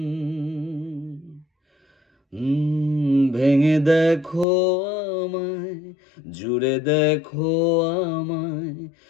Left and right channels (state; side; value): drops out; right; at 4.5 s